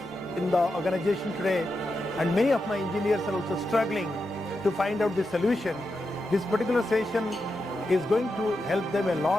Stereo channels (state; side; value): noise; right; rumble, 27 dB below the sound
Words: in the organization today, and many of my engineers are also struggling to find out the solution, this particular session is going to help them a